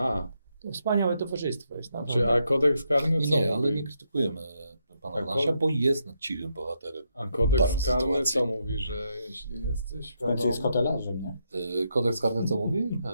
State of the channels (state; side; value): inverted; both; correlation -0.79